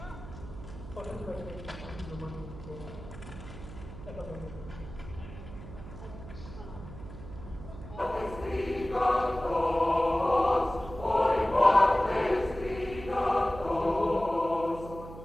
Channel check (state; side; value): noise; right; hum, 13 dB below the sound